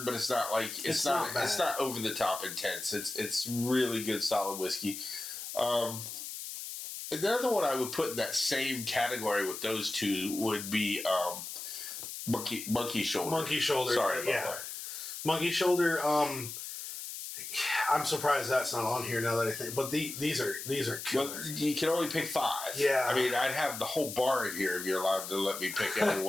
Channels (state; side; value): noise; left; hiss, 8 dB below the sound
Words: but it's not like it's not over the top intense. It's really good, solid whiskey. Another one I would put in that same category with those two would be Monkey Shoulder. Monkey Shoulder. Sorry about that. Monkey Shoulder. I'm surprised that's not on here now that I think. But these are killer. Well, you can only pick 5. Yeah. I mean, I'd have the whole bar in here if you're allowed to let me pick every